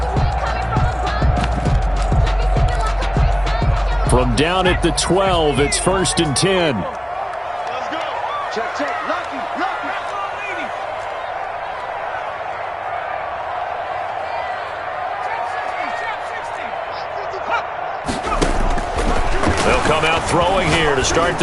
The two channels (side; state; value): both; identical; correlation 1.00